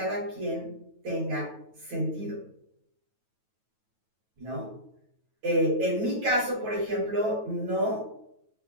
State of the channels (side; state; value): left; late; 9.2 ms